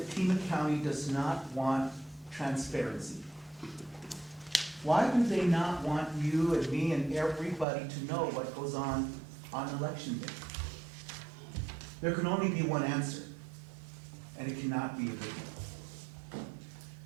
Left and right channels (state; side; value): drops out; left; at 7.7 s